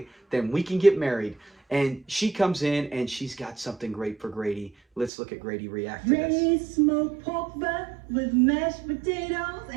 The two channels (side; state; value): left; drops out; at 5.1 s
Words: then we can get married. And she comes in, and she's got something great for Grady. Let's look at Grady react to this. Ready smoked pork butt with mashed potatoes